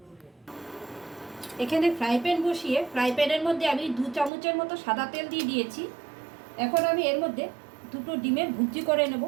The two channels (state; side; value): drops out; left; at 4.3 s